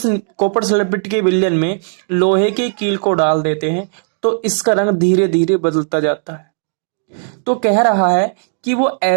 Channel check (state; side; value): silent; left; digital silence